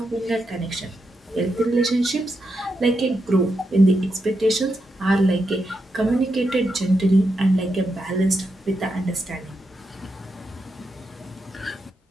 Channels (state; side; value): normal; both; correlation 0.85